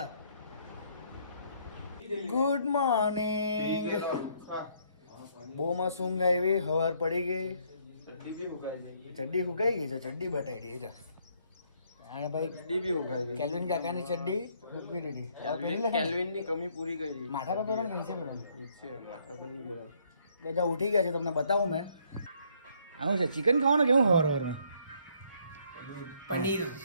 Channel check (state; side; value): inverted; both; correlation -0.67